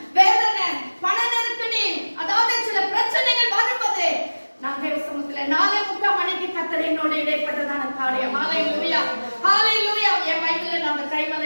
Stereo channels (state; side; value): inverted; both; correlation -1.00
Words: வேதனை, பண நெருக்கடி, அதாவது சில பிரச்சனைகள் வரும்போது நான் தேவ சமூகத்துல 4:30 மணிக்கு கர்த்தர் என்னோட இடைப்பட்டதான காரியம். Hallelujah. Hallelujah. என் பைபிள்ல நான் அந்த